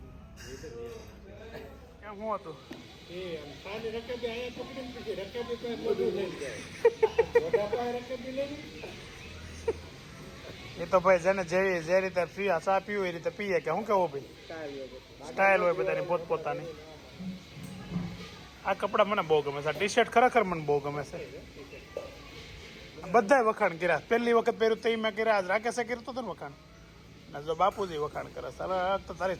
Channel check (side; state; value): both; identical; correlation 1.00